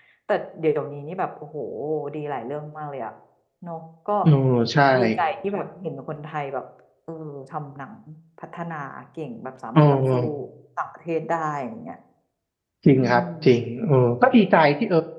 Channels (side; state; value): both; identical; correlation 1.00